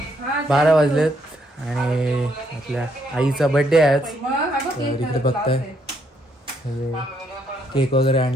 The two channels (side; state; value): both; normal; correlation 0.73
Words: 12 वाजलेत आणि आपल्या आईचा birthday आहे आज. तर इकडे बघताय केक वगैरे